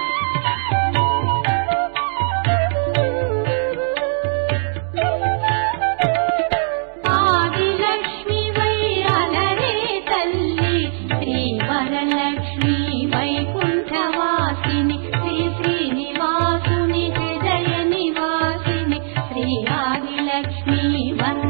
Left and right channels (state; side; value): silent; left; 66 dB below the other